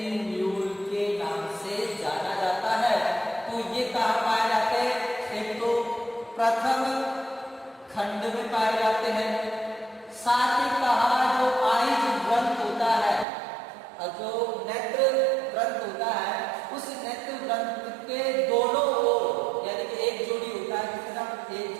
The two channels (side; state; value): left; drops out; at 13.2 s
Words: के नाम से जाना जाता है। तो ये कहाँ पाए जाते हैं? एक तो प्रथम खंड में पाए जाते हैं। साथ ही कहा जो आइज ग्रंथ होता है, जो नेत्र ग्रंथ होता है, उस नेत्र ग्रंथ के दोनों ओर यानी कि एक जोड़ी होता है, कितना? एक